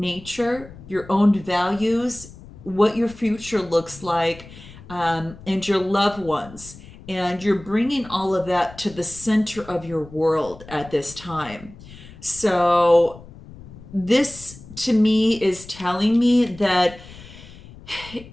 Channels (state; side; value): noise; left; rumble, 18 dB below the sound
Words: your own values, what your future looks like, and your loved ones. And you're bringing all of that to the center of your world at this time. So this to me is telling me that